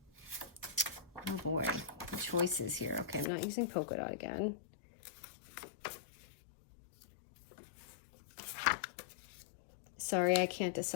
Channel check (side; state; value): right; drops out; at 3.2 s